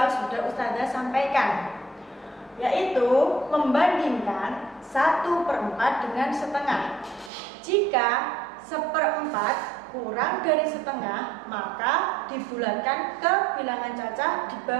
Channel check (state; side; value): drops out; left; at 7.3 s